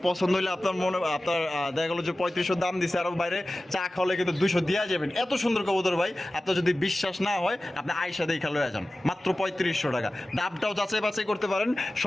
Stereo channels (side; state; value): both; normal; correlation 0.96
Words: পছন্দ হইলে আপনার মনে আপনার দেখা গেলো যে 3500 দাম দিছে, আরো বাইরে চা খাওয়ালে কিন্তু 200 দিয়া যাবেন। এত সুন্দর কবুতর ভাই, আপনার যদি বিশ্বাস না হয় আপনি আইসা দেখা লয়ে যান। মাত্র 3500 টাকা। দামটাও যাচাই বাছাই করতে পারেন,